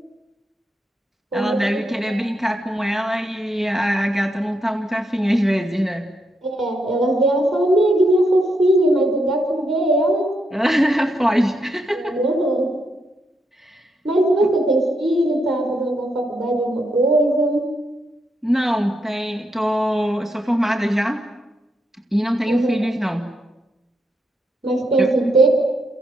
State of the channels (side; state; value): both; normal; correlation 0.80